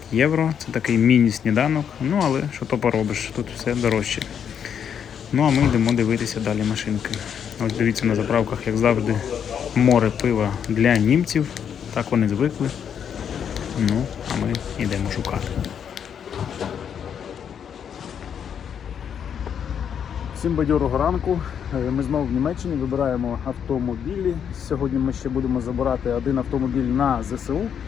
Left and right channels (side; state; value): right; quieter; 8.1 dB